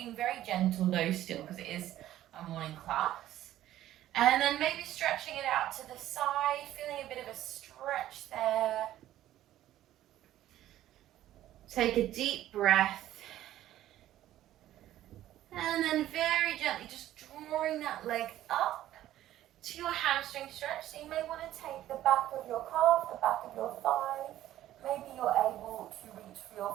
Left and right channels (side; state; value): left; quieter; 13.4 dB